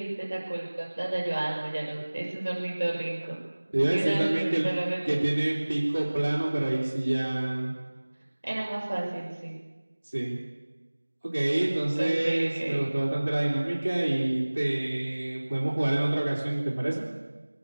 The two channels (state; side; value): inverted; both; correlation -1.00